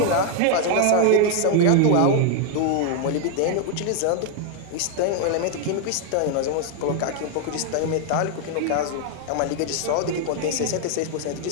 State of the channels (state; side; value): different; both; correlation 0.00